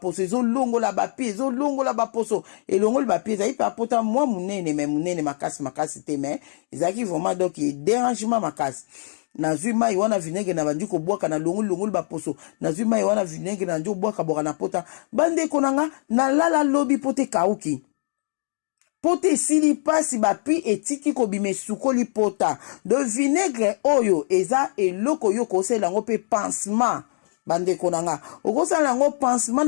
ezo longola ba pi ezo longola ba poso elongola ba pi ezai pa pota mwa munene makasi te mais ezaki vraiment donc dérangement makasi nazwi mai wana vinaigre na bandiko bwaka na longola ba poso nazwi mai wana vinaigre na njo bwaka boka na pota bandeko nanga na lala lobi pote kauki pote sili pasi bapi etiki kobime sukoli pota de vinaigre oyo eza eloko yo kosela ngo pe pansement bandeko nanga okosala ngo pansement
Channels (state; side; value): silent; right; digital silence